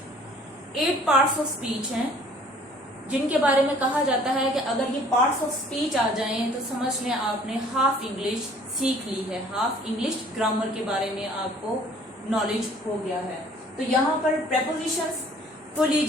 8 parts of speech हैं जिनके बारे में कहा जाता है कि अगर ये पार्ट्स ऑफ स्पीच आ जाएं तो समझ लें आपने हाफ इंग्लिश सीख ली है, हाफ इंग्लिश ग्रामर के बारे में आपको नॉलेज हो गया है। तो यहाँ पर प्रेपोजिशंस को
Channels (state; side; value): normal; both; correlation 0.54